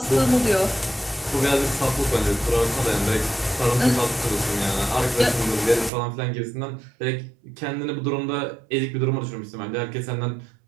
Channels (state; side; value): drops out; left; at 5.9 s